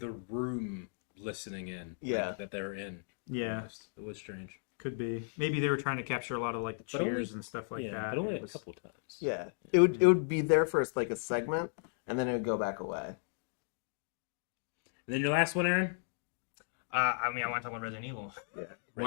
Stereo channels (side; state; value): right; silent; digital silence